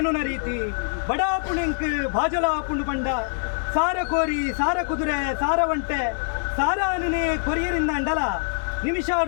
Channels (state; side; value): silent; right; digital silence